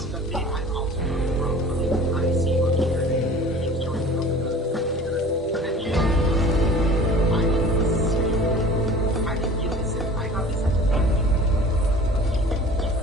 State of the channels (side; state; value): both; normal; correlation 0.44